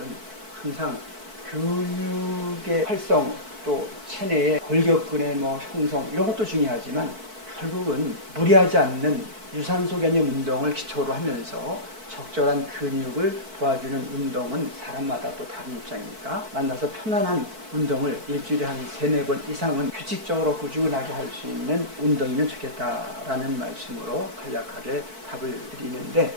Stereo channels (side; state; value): left; late; 4.6 ms